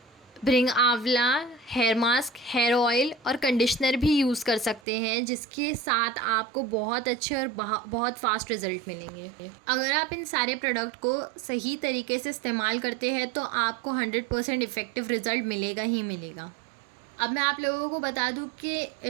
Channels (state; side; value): drops out; left; at 4.8 s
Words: ब्रिंग आंवला हेयर मास्क, हेयर ऑयल और कंडीशनर भी यूज़ कर सकते हैं, जिसके साथ आपको बहुत अच्छे और बहुत फास्ट रिज़ल्ट मिलेंगे। अगर आप इन सारे प्रोडक्ट को सही तरीके से इस्तेमाल करते हैं तो आपको 100% इफ़ेक्टिव रिज़ल्ट मिलेगा ही मिलेगा। अब मैं आप लोगों को बता दूं कि